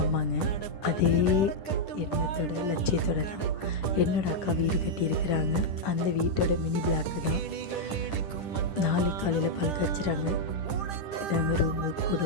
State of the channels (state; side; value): late; right; 10 ms